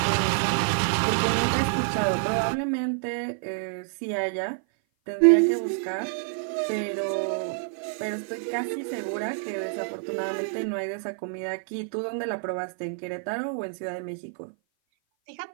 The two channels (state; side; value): silent; left; 56 dB below the other